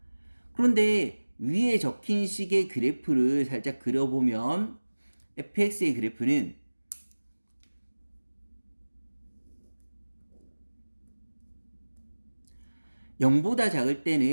그런데 위에 적힌 식의 그래프를 살짝 그려보면 fx의 그래프는 (0보다) 작을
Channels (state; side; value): inverted; both; correlation -1.00